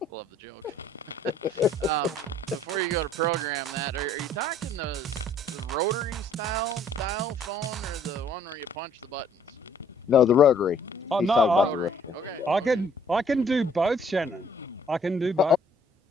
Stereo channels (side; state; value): both; normal; correlation 0.60